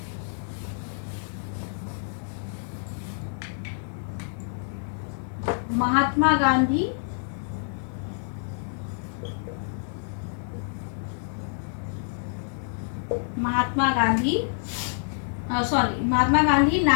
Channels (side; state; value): right; silent; 60 dB below the other